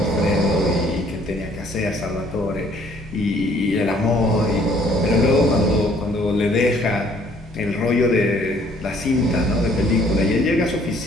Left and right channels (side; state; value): both; normal; correlation 0.60